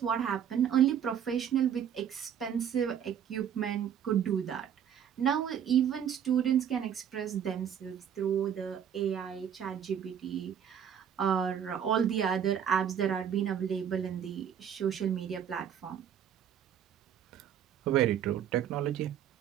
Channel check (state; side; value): quieter; left; 8.8 dB